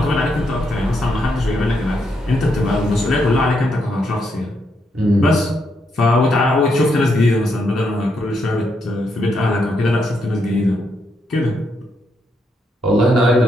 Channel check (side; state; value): both; normal; correlation 0.79